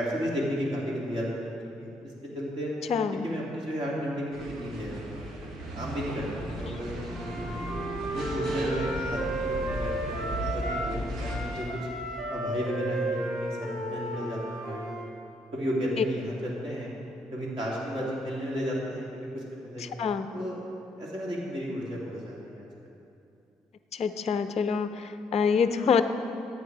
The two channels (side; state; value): both; normal; correlation 0.70